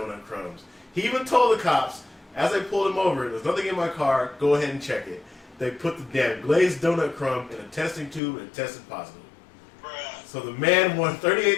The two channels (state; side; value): drops out; right; at 8.2 s